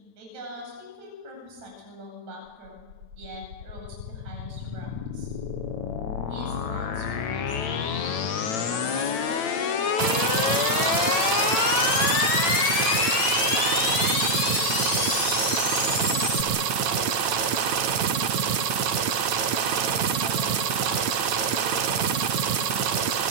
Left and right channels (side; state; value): left; late; 9.0 ms